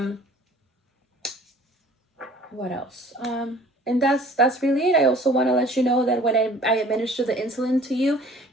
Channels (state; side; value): normal; both; correlation 0.51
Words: What else? And that's really it. I also want to let you know that when I administer the insulin to you,